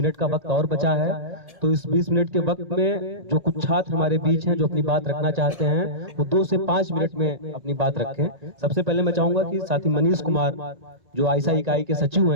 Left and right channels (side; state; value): left; late; 1.8 ms